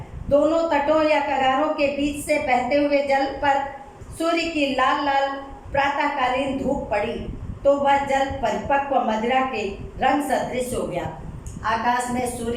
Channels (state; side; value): identical; both; correlation 1.00